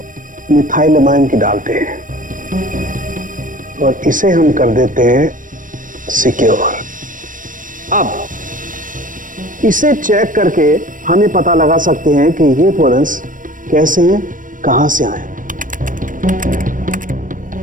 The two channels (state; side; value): late; left; 0.38 ms